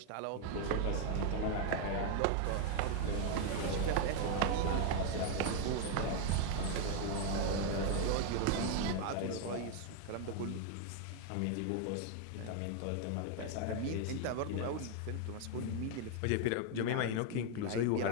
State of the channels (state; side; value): different; both; correlation 0.01